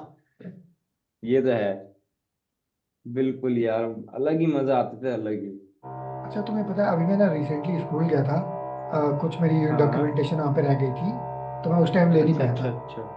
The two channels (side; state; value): both; identical; correlation 1.00